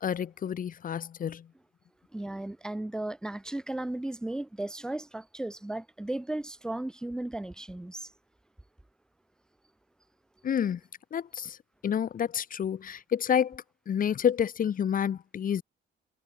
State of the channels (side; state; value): right; quieter; 5.7 dB